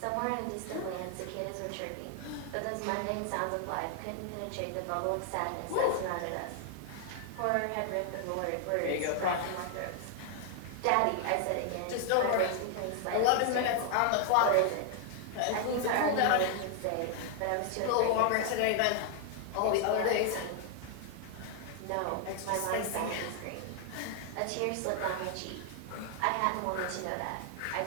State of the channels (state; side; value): different; both; correlation 0.00